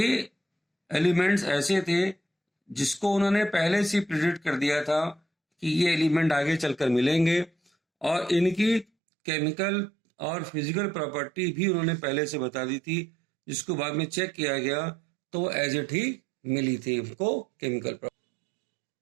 एलिमेंट्स ऐसे थे जिसको उन्होंने पहले से प्रिडिक्ट कर दिया था कि ये एलिमेंट आगे चलकर मिलेंगे, और इनकी केमिकल और फिजिकल प्रॉपर्टी भी उन्होंने पहले से बता दी थी, जिसको बाद में चेक किया गया तो वो एज इट ही मिली थी उनको केमिकल प्रॉपर्टी।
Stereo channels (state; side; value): drops out; left; at 8.8 s